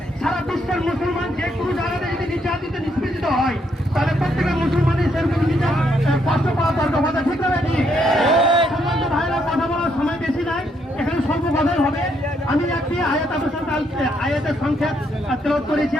সারা বিশ্বের মুসলমান যে কোনো জায়গাতে যদি নির্যাতিত নিষ্পেষিত হয়, তাহলে প্রত্যেকের মুসলমানের সেরকম কষ্ট পাওয়া দরকার, কথা ঠিক না ভাই? সম্মানিত ভাইরা, কথা বলার সময় বেশি নাই, এখানে স্বল্প কথাই হবে। আমি একটি আয়াতের সংক্ষেপ তেলাওয়াত করেছি।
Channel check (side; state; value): both; normal; correlation 0.74